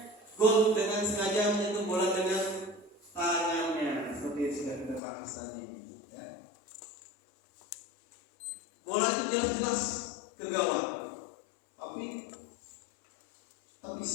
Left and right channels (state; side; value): drops out; right; at 5.0 s